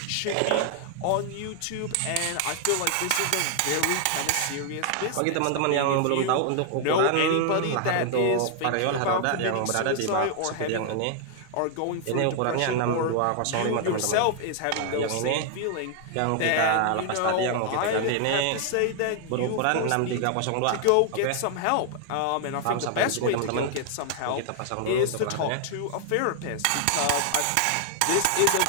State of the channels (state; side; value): different; both; correlation 0.00